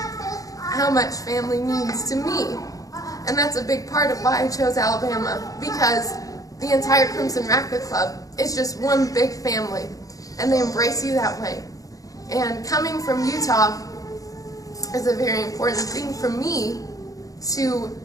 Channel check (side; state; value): right; late; 0.17 ms